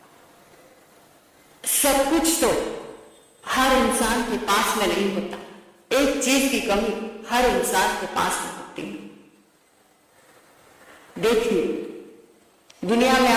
सब कुछ तो हर इंसान के पास में नहीं होता। एक चीज की कमी हर इंसान के पास में होती है। देखिए, दुनिया में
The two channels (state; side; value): identical; both; correlation 1.00